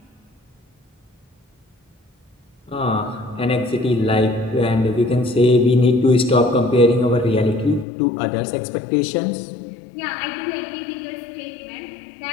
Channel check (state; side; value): drops out; right; at 7.9 s